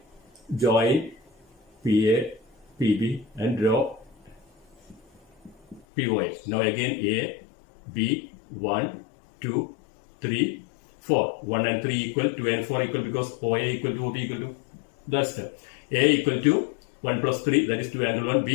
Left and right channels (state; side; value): drops out; right; at 5.8 s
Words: join PA, PB and draw POS. Now again A, B, 1, 2, 3, 4. 1 and 3 equal, 2 and 4 equal because OA equal to OB equal to. That's it. A equal to 1 plus 3, that is 2 angle 1.